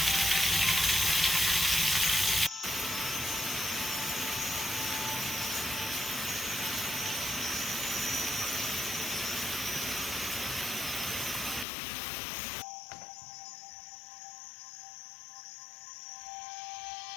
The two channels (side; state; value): right; drops out; at 11.7 s